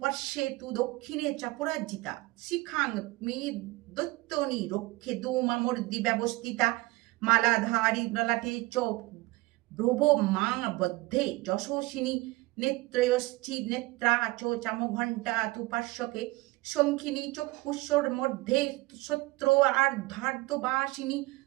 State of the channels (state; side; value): quieter; left; 21.2 dB